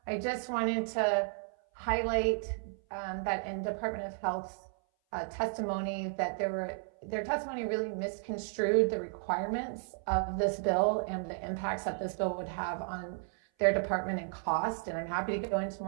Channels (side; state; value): left; silent; 55 dB below the other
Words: I just wanted to highlight that in Department of Health's testimony that their testimony really misconstrued the requirements of this bill and the impacts that this bill would have on their department and cost. And I'm happy to go into